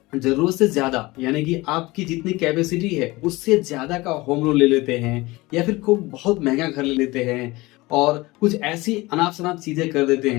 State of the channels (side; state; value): right; quieter; 21.3 dB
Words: ज़रूरत से ज़्यादा यानी कि आपकी जितनी कैपेसिटी है उससे ज़्यादा का होम लोन ले लेते हैं या फिर खूब बहुत महँगा घर ले लेते हैं और कुछ ऐसी अनाप-शनाप चीज़ें कर देते